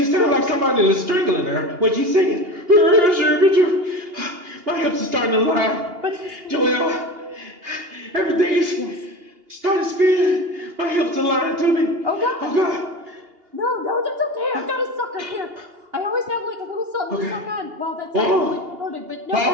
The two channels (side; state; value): left; late; 2.8 ms